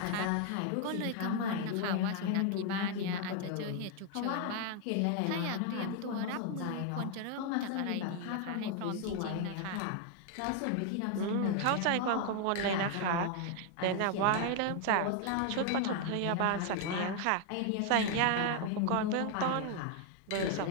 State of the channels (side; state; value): both; different; correlation 0.00